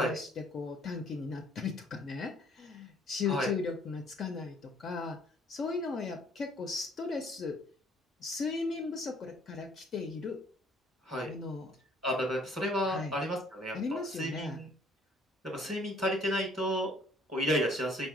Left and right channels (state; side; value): normal; both; correlation 0.60